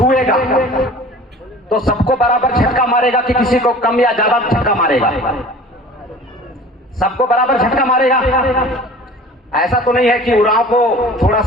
तो सबको बराबर झटका मारेगा कि किसी को कम या ज्यादा झटका मारेगा? सबको बराबर झटका मारेगा। ऐसा तो नहीं है कि उराव को थोड़ा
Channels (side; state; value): both; normal; correlation 0.43